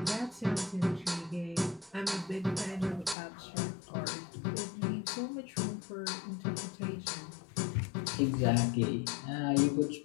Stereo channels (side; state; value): right; drops out; at 3.2 s